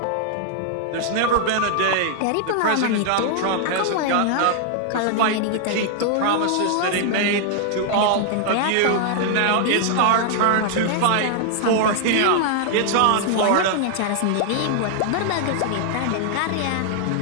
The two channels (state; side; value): different; both; correlation 0.00